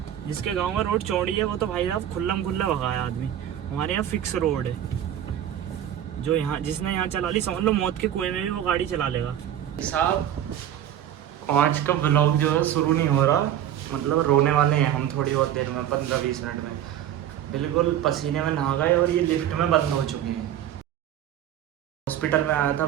जिसके गांव में रोड चौड़ी है वो तो भाई साहब खुल्लम खुल्ला भगाया आदमी। हमारे यहाँ फिक्स रोड है, जो यहाँ जिसने यहाँ चला ली समझ लो मौत के कुएं में भी वो गाड़ी चला लेगा। साहब आज का व्लॉग जो है शुरू नहीं हो रहा, मतलब रोने वाले हैं हम थोड़ी बहुत देर में, 15-20 मिनट में। बिल्कुल पसीने में नहा गए और ये लिफ्ट में बंद हो चुके हैं। हॉस्पिटल में आया था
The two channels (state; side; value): quieter; left; 10.9 dB